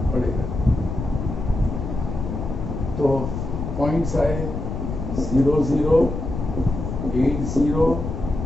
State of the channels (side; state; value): left; noise; rumble, 5 dB below the sound